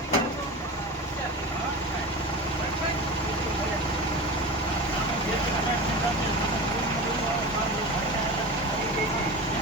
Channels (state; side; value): normal; both; correlation 0.29